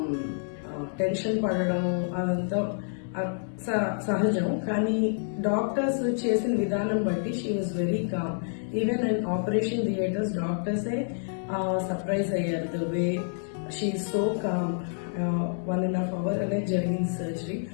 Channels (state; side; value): silent; right; digital silence